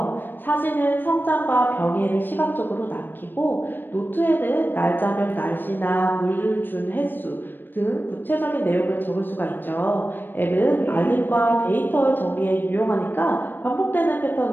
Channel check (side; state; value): right; late; 0.094 ms